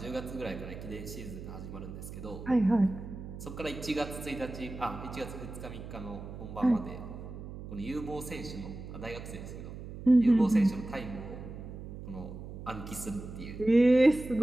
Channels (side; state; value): right; noise; hum, 11 dB below the sound